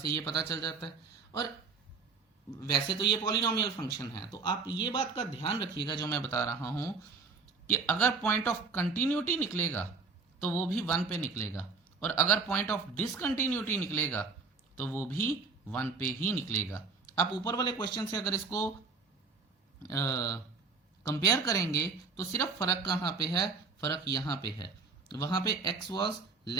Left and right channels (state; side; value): quieter; left; 4.7 dB